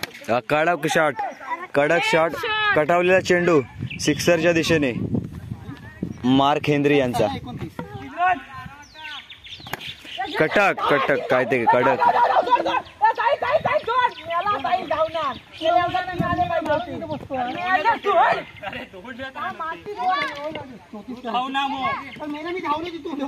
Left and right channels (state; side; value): identical; both; correlation 1.00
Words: कडक शॉट कटावलेला चेंडू सिक्सरच्या दिशेने. मार्क हेनरी यांचा कटक काय ते कडक.